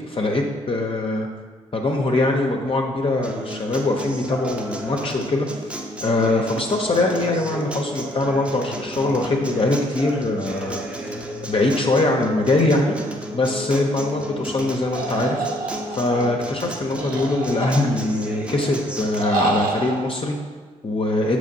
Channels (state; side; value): normal; both; correlation 0.65